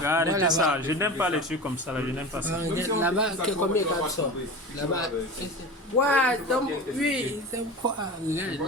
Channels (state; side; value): normal; both; correlation 0.31